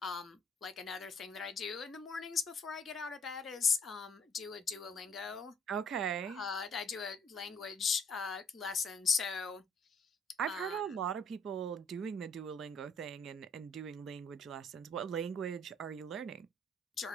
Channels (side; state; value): both; normal; correlation 0.61